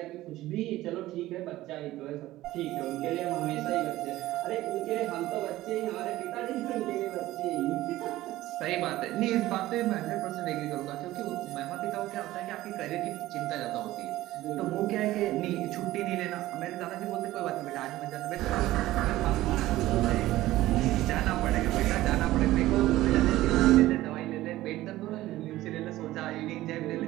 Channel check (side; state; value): left; quieter; 16.1 dB